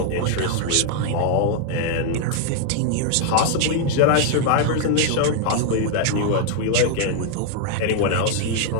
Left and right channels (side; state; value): both; different; correlation 0.00